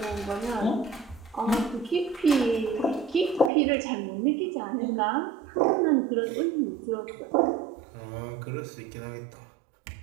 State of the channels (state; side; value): drops out; left; at 3.5 s